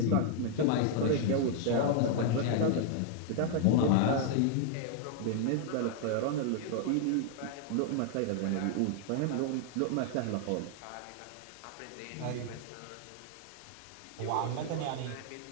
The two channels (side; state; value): both; different; correlation 0.00